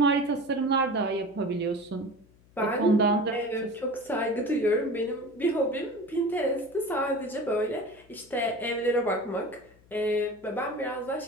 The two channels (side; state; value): left; noise; hum, 29 dB below the sound